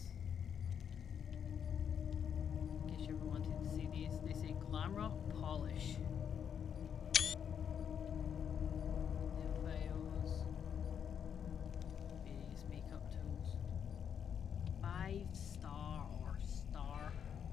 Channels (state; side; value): quieter; right; 8.0 dB